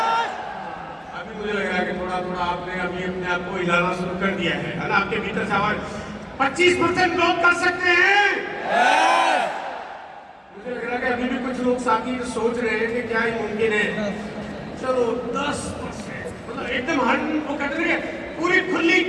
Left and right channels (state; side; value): identical; both; correlation 1.00